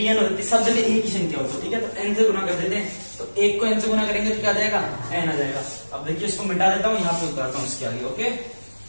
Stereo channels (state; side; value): inverted; both; correlation -1.00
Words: हो जाती, सब जगह एक ही संख्या होती। ठीक है, तो n से गुना कर देते हैं, तो एक को n से गुना करेंगे तो क्या आ जाएगा n आ जाएगा। अब देखिए इसको मिटा देता हूं, यहां पे उतारता हूं इसके आगे। ओके,